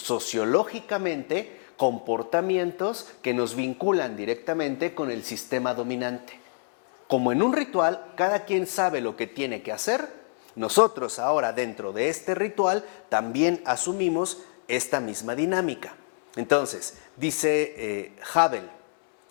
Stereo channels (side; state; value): right; silent; 60 dB below the other